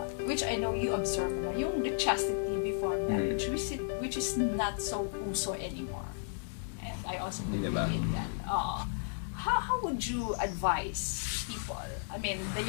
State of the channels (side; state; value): right; silent; digital silence